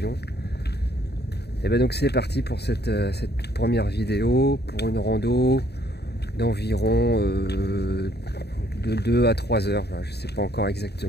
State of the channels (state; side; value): late; right; 0.48 ms